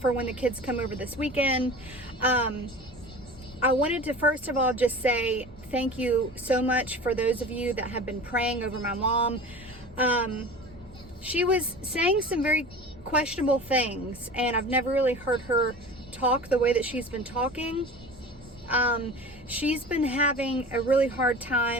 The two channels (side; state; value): both; normal; correlation 0.36